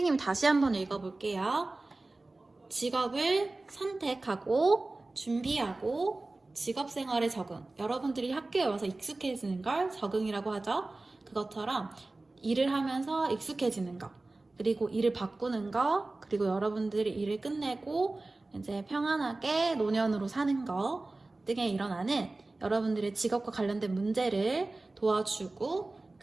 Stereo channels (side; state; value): left; quieter; 3.1 dB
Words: 다시 한번 읽어볼게요. 직업을 선택하고 준비하고 직업생활에 적응. 여러분들이 학교에 와서 익숙해지는 걸 적응이라고 하죠. 그것처럼 일을 하면서 익숙해지는 거, 그리고 일을 바꾸는 거, 그리고 여러분들이 일을 끝내고 이제 평안하게 노년으로 사는 거 등에 일어나는 여러분들의 직업과 관련된 문제를 도와주고